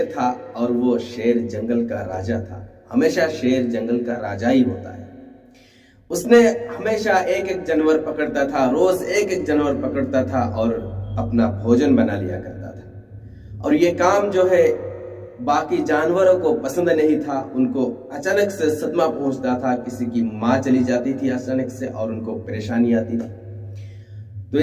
था और वो शेर जंगल का राजा था। हमेशा शेर जंगल का राजा ही होता है। उसने हमेशा एक एक जानवर पकड़ता था, रोज एक एक जानवर पकड़ता था और अपना भोजन बना लिया करता था। और ये काम जो है बाकी जानवरों को पसंद नहीं था। उनको अचानक से सदमा पहुंचता था, किसी की माँ चली जाती थी अचानक से और उनको परेशानी आती थी। तो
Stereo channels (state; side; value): identical; both; correlation 1.00